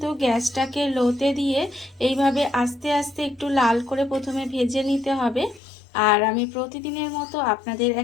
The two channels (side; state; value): right; drops out; at 5.6 s